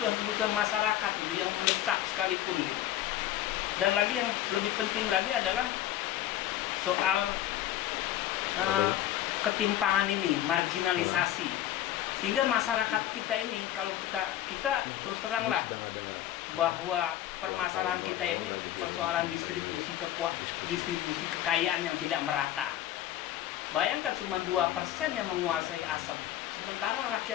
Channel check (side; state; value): right; quieter; 12.6 dB